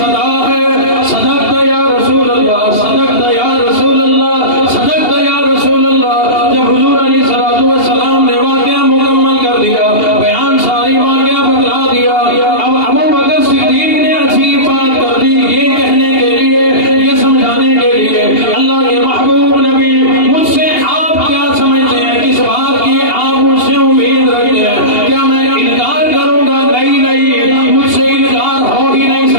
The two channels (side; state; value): right; late; 2.8 ms